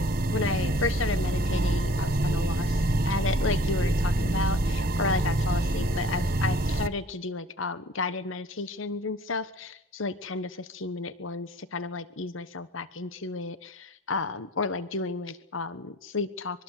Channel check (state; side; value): normal; both; correlation 0.50